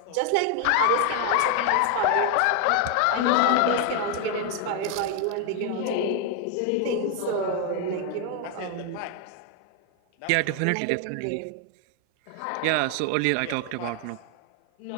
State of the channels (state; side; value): different; both; correlation 0.01